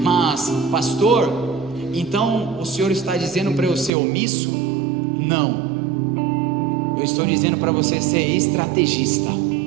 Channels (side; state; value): left; drops out; at 3.9 s